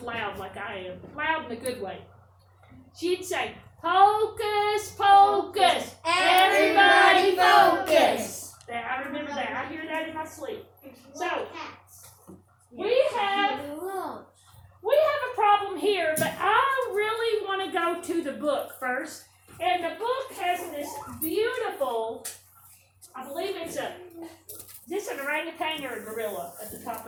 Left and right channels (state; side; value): identical; both; correlation 1.00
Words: loud like I am. Loud in a good way. She'd say, "Hocus pocus, everybody focus." I remember that. I hear that in my sleep. So, we have a problem here, but I really want to go to the book first. And the book has this beautiful, I believe it's is this an orangutan or a gorilla at the top